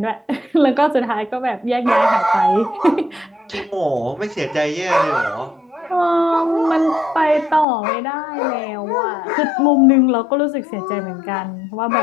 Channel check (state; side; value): drops out; right; at 7.7 s